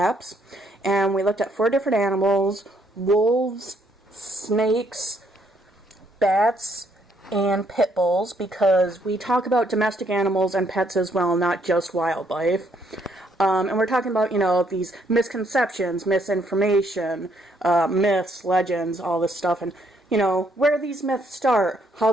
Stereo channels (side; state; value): both; normal; correlation 0.70